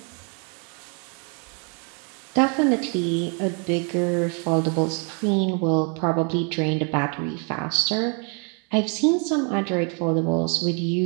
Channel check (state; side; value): quieter; left; 38.2 dB